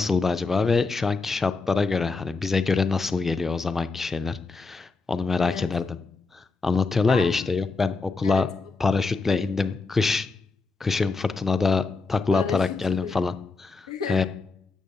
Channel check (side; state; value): right; quieter; 4.1 dB